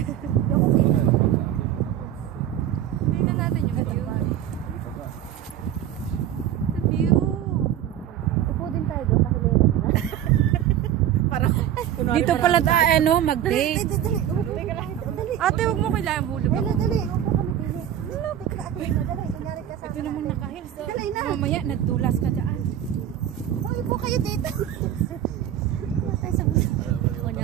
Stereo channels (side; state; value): left; quieter; 10.9 dB